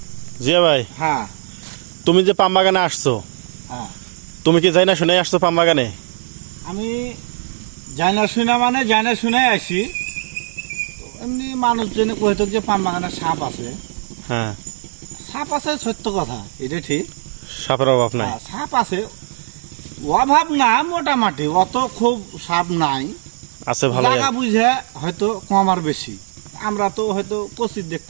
জিয়া ভাই, হ্যাঁ তুমি যে পাম বাগানে আসছো, হ্যাঁ তুমি কি যাই না শুনে আসছো পাম বাগানে? আমি যাই না শুনে মানে যাই না শুনে আসি। এমনি মানুষ জেনে কইতো যে পাম বাগানে সাপ আছে। হ্যাঁ, সাপ আছে সত্য কথা, এটা ঠিক। সাপের অভাব নাই। সাপ আছে, অভাব না, মোটামুটি অত খুব সাপ নাই। আছে ভালো। জায়গা বুঝে হয়তো কম আর বেশি, আমরা তো হয়তো কচিত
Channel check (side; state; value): left; silent; digital silence